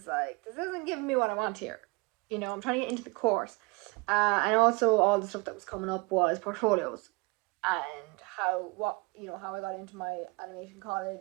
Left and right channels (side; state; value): left; quieter; 26.3 dB